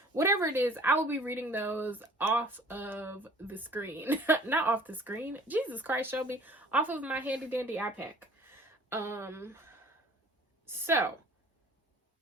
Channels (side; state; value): both; normal; correlation 0.51